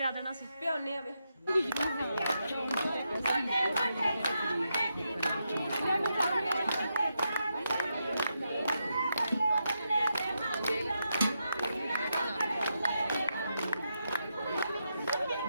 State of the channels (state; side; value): inverted; both; correlation -0.84